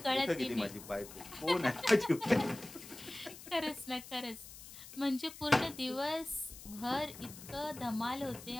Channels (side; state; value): left; noise; hiss, 15 dB below the sound